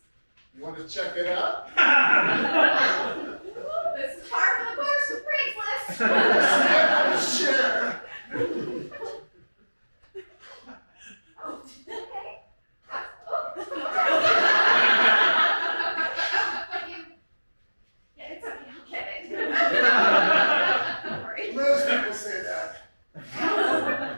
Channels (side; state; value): both; inverted; correlation -1.00